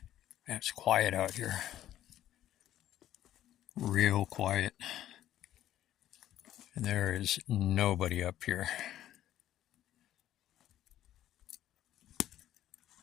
Man, it's quiet out here. Real quiet. And there is nobody up here.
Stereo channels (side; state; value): right; quieter; 12.5 dB